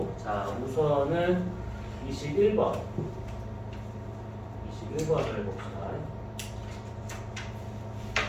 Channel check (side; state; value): both; identical; correlation 1.00